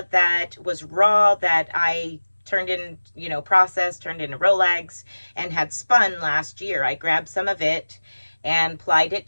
that was raw, that I turned in, processed, turned into Rolags, and had spun last year. I grabbed some of it and plied it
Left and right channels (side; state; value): both; inverted; correlation -1.00